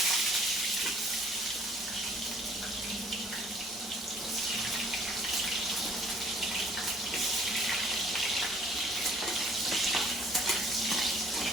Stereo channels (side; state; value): both; normal; correlation 0.58